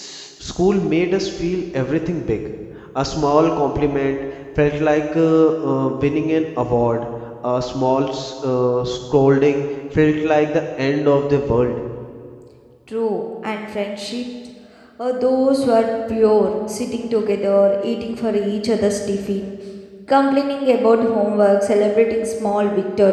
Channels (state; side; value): identical; both; correlation 1.00